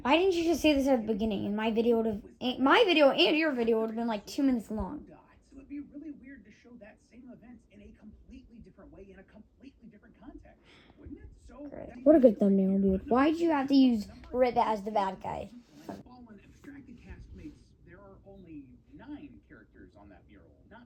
Why didn't you just say this at the beginning? And my video and your video would have been like 2 minutes long. So it'd be really weird to show that same event in a completely different way, in a completely different context, wouldn't it? So What a good thumbnail, dude. Why'd you have to use Rip as the bad guy? Fallen abstracted castmates, there are only 9 characters on that mural,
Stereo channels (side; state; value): both; identical; correlation 1.00